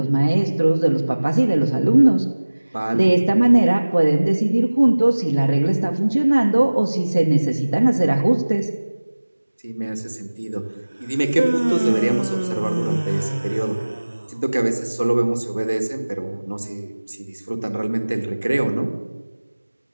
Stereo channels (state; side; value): inverted; both; correlation -1.00